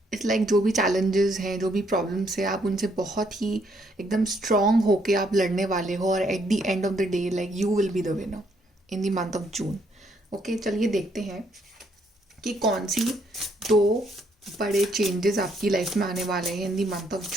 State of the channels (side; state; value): both; normal; correlation 0.71